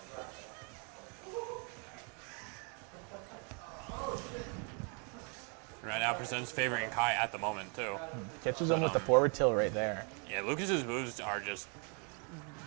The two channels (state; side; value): quieter; left; 37.0 dB